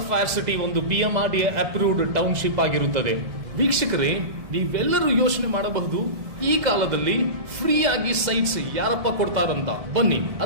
ಸಿಟಿ ಒಂದು BMRDA ಅಪ್ರೂವ್ಡ್ ಟೌನ್ಶಿಪ್ ಆಗಿರುತ್ತದೆ. ವೀಕ್ಷಕರೇ, ನೀವೆಲ್ಲರೂ ಯೋಚನೆ ಮಾಡಬಹುದು, ಈ ಕಾಲದಲ್ಲಿ ಫ್ರೀ ಆಗಿ ಸೈಟ್ಸ್ ಯಾರಪ್ಪ ಕೊಡ್ತಾರಂತ. ಬನ್ನಿ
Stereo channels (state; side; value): late; left; 1.7 ms